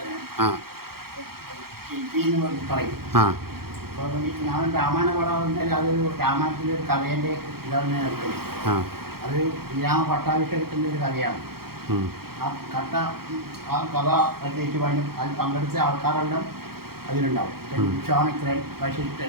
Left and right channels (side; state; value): left; late; 0.94 ms